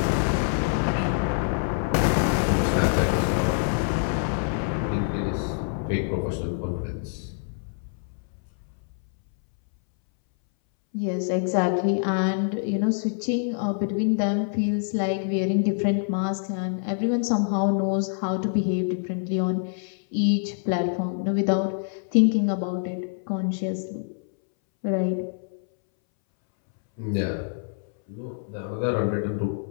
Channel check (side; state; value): right; silent; 61 dB below the other